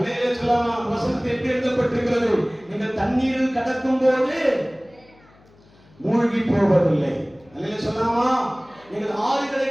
சொல்லாமா? வசனத்தில் எப்படி எழுதப்பட்டிருக்கிறது? நீங்கள் தண்ணீரில் கடக்கும் போது மூழ்கி போவதில்லை. அல்லேலூயா சொல்லாமா? நீங்கள் ஆறுகளை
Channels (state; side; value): noise; left; hum, 29 dB below the sound